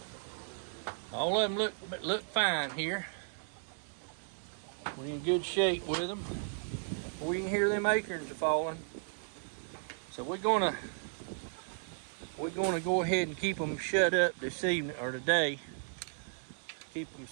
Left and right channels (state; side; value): silent; left; 54 dB below the other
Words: All of them look fine here. We're in good shape with them. We can hear them acorns are falling. So we're gonna go ahead and keep them shut up this evening or today. Keep them